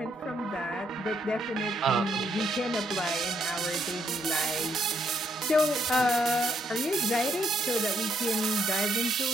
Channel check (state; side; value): normal; both; correlation 0.74